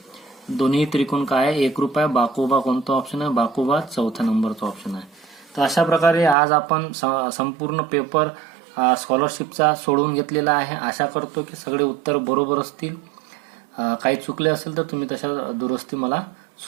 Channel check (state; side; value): drops out; left; at 6.4 s